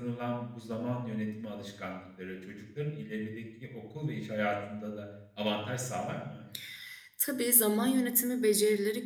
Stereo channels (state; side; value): identical; both; correlation 1.00